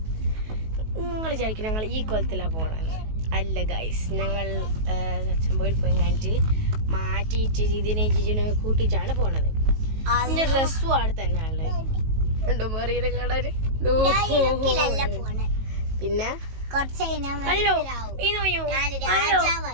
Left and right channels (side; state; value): left; late; 19 ms